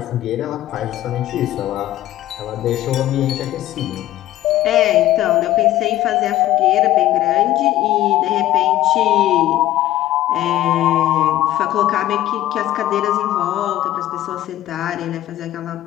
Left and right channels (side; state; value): right; quieter; 14.1 dB